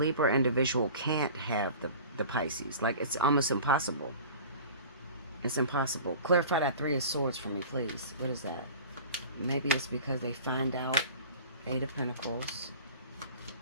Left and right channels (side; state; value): both; inverted; correlation -0.41